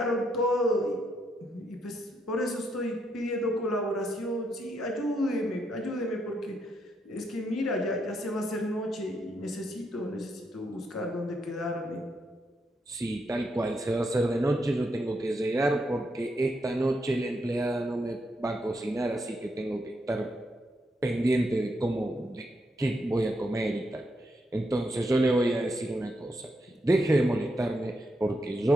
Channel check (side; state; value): both; normal; correlation 0.80